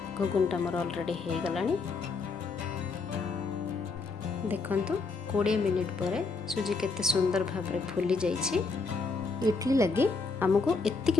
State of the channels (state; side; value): quieter; right; 4.2 dB